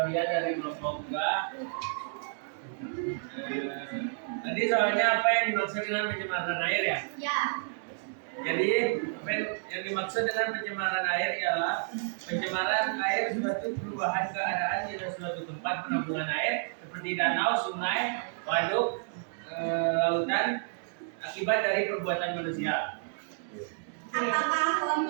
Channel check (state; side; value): silent; left; digital silence